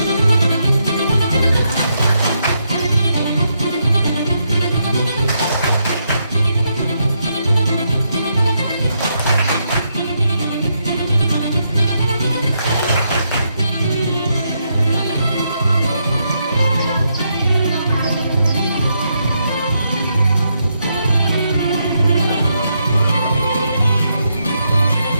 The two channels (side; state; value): both; inverted; correlation -0.80